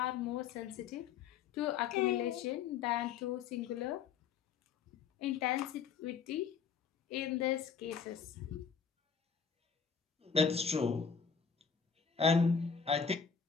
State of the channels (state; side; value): quieter; right; 6.5 dB